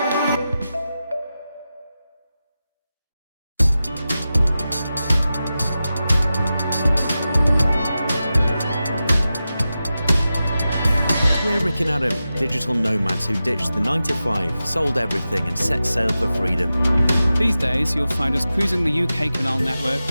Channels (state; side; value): inverted; both; correlation -0.93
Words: We're Rick and Adam, digital nomads who ditched the 9-to-5, sold everything and set sail for freedom. These days, you'll find us cruising the UK canal network